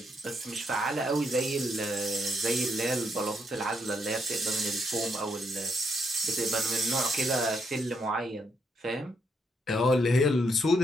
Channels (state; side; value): normal; both; correlation 0.77